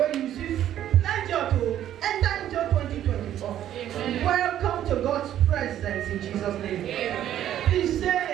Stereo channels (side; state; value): left; quieter; 11.5 dB